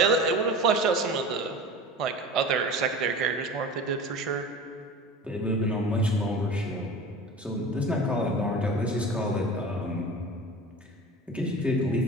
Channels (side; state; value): both; normal; correlation 0.35